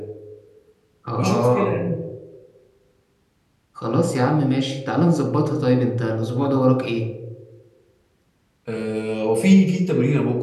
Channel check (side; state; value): both; identical; correlation 1.00